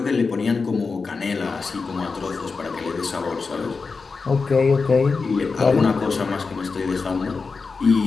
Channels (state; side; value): quieter; right; 4.5 dB